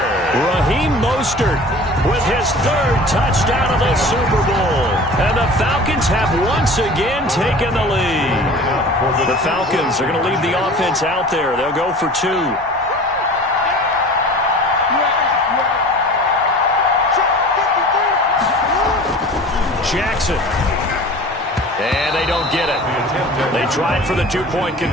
Raheem Mostert with his third touchdown of the Super Bowl. And the Falcons have once again taken the lead. The Falcons are going to leave the offense out there. They'll go for 2. Jackson. And they don't get it. They tried for the 2-point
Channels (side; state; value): both; normal; correlation 0.41